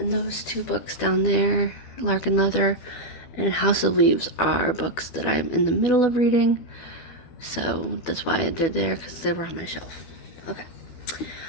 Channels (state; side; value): late; right; 12 ms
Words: those 2 books down there, Lark and Leather and House of Leaves are books that I'm in the middle of reading, so that's why they're there, because they were on my shelf. Okay.